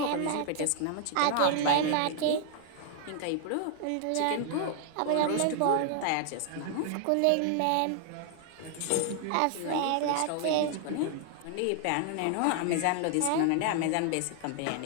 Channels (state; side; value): different; both; correlation 0.00